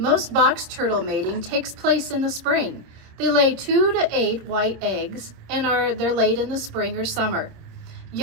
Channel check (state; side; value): late; left; 26 ms